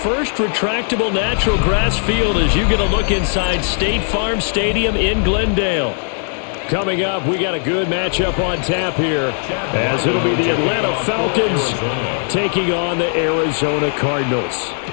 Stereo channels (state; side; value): silent; right; 58 dB below the other